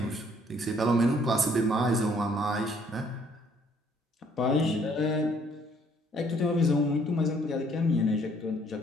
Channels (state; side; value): normal; both; correlation 0.63